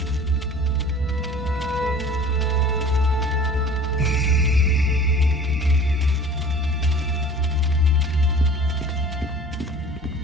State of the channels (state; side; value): normal; both; correlation 0.44